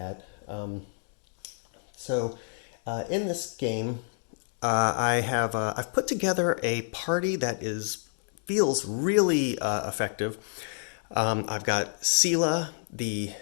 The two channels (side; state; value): right; silent; 58 dB below the other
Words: In this game, I've put together a party that is feels really effective. I've got Sela, the